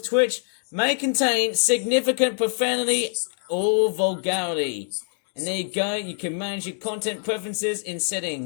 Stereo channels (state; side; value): silent; right; 62 dB below the other